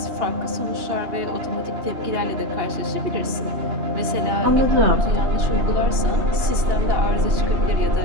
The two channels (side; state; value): left; late; 2.8 ms